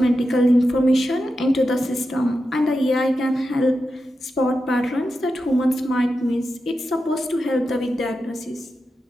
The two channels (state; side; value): normal; both; correlation 0.89